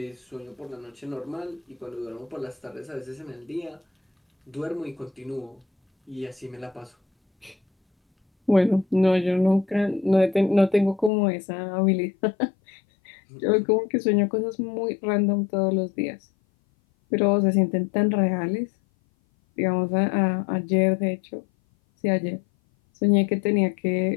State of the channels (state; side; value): drops out; right; at 11.1 s